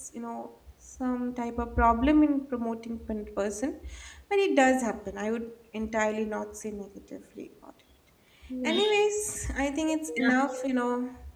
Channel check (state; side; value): identical; both; correlation 1.00